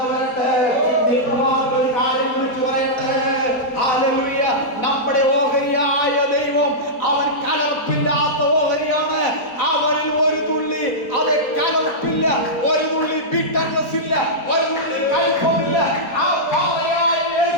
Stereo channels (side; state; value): right; late; 4.2 ms